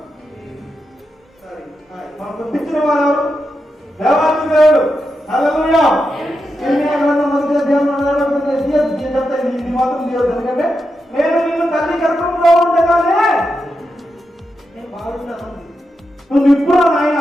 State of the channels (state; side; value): normal; both; correlation 0.87